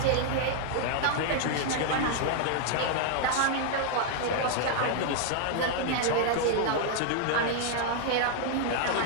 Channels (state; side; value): different; both; correlation 0.00